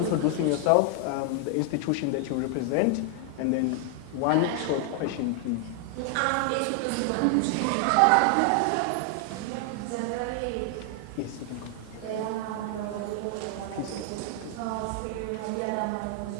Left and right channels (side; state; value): both; different; correlation 0.00